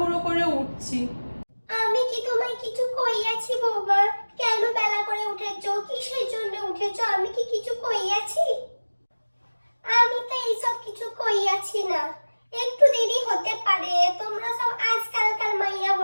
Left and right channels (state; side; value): inverted; both; correlation -1.00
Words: করে উঠছি। আমি কি তোমায় কিছু কইয়াছি বৌমা? কেন বেলা করে উঠেছো? কিসের জন্য উঠেছো? আমি কি কিছু কইয়াছি? আমি তো এইসব কিছু কইয়াছি না। একটু দেরি হতে পারে, তোমরা সব আজকালকার মাইয়া